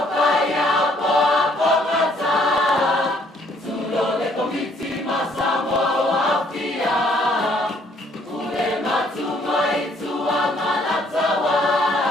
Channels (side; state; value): both; normal; correlation 0.65